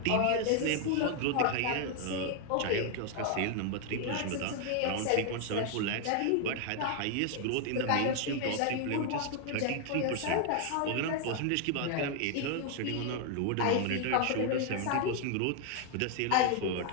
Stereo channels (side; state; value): both; different; correlation 0.00